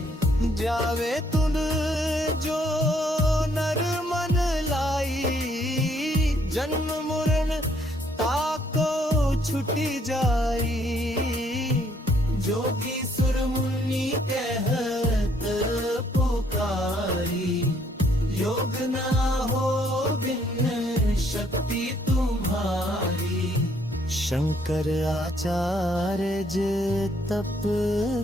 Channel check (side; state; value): both; normal; correlation 0.67